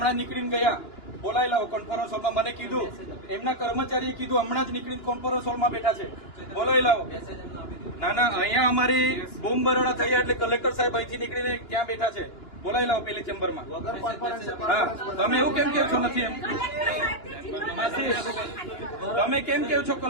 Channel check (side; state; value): right; late; 2.9 ms